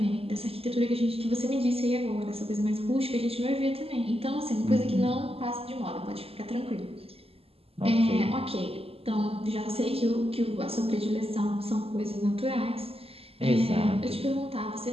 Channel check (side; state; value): left; late; 0.28 ms